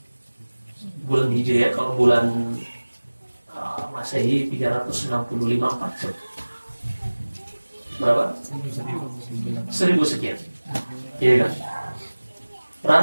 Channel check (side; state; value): both; inverted; correlation -1.00